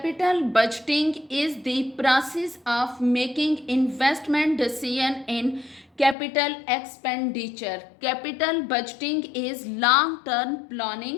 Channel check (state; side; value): drops out; right; at 6.2 s